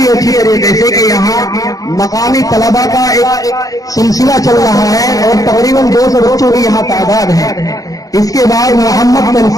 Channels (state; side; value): late; right; 0.17 ms